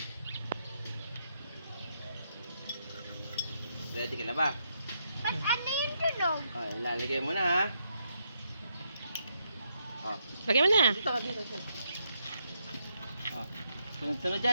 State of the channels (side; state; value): both; inverted; correlation -0.78